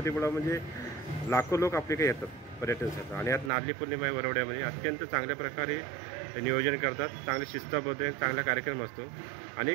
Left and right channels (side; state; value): left; drops out; at 3.5 s